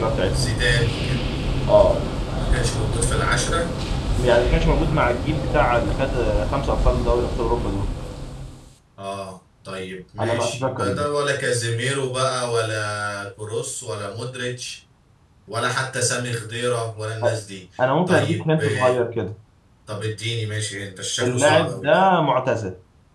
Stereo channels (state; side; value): identical; both; correlation 1.00